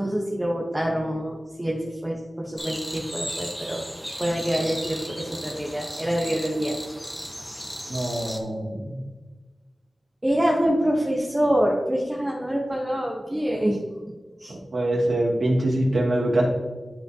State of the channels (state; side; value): normal; both; correlation 0.96